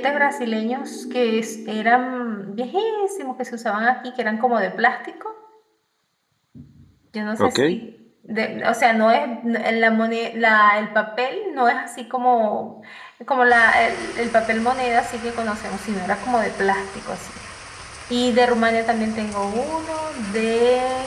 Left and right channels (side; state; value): both; identical; correlation 1.00